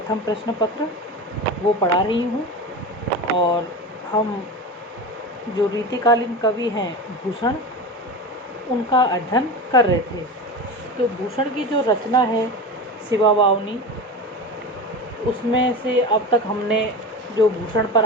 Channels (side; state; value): both; normal; correlation 0.26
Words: प्रश्न पत्र वो पढ़ा रही हूँ। और हम जो रीतिकालीन कवि हैं भूषण, उनका अध्ययन कर रहे थे। तो भूषण की जो रचना है शिवा वावनी, उसमें से अब तक हमने जो भूषण